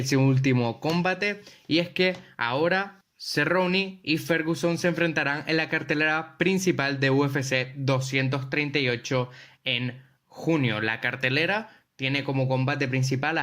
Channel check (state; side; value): identical; both; correlation 1.00